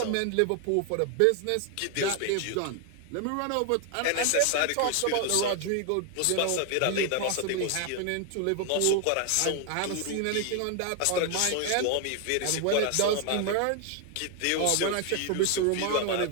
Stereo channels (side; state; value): both; different; correlation 0.01